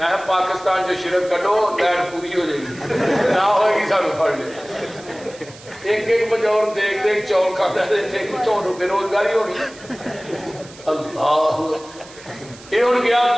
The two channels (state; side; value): noise; right; hiss, 20 dB below the sound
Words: پاکستان جو شرک کٹو لین پوری ہو جائے گی نہ ہوئے گی سانو پڑھ لے ایک بجور دیکھ چور کھانا دیتے کتوں بے روزگاری ہونی اللہ یہ ہوں گیا